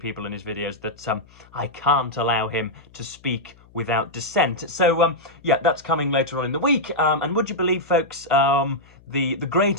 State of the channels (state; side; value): noise; left; hum, 27 dB below the sound